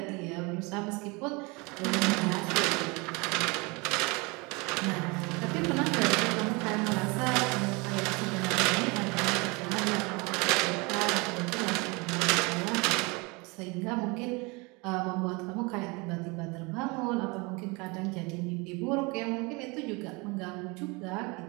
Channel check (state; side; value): quieter; left; 27.4 dB